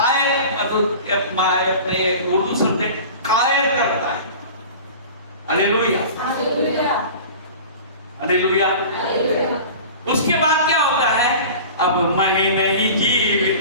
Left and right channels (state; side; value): inverted; both; correlation -0.38